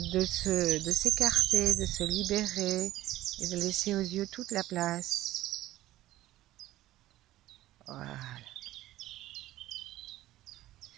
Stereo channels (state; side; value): quieter; left; 15.2 dB